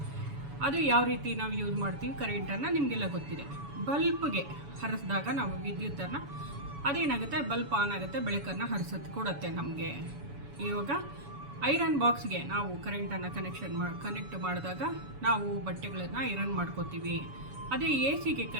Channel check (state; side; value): late; left; 7.1 ms